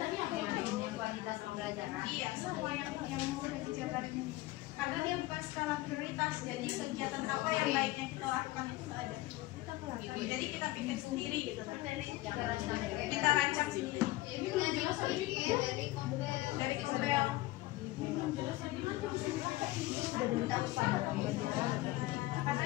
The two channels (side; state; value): right; quieter; 18.4 dB